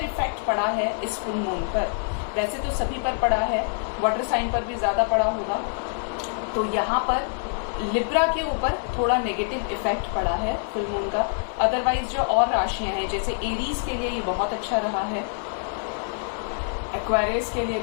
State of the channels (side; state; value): right; silent; 61 dB below the other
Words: इफेक्ट पड़ा है इस फुल मून पर, वैसे तो सभी पर पड़ा है, वाटर साइन पर भी ज्यादा पड़ा होगा। तो यहाँ पर लिब्रा के ऊपर थोड़ा नेगेटिव इफेक्ट पड़ा है फुल मून का। अदरवाइज जो और राशियां हैं, जैसे एरीज के लिए ये बहुत अच्छा रहा है, एक्वेरियस के लिए